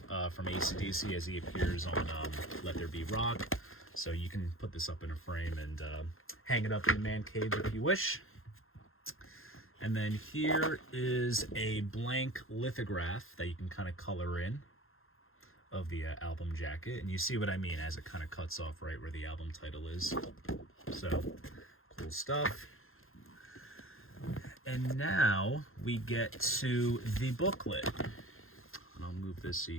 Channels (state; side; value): late; right; 0.60 ms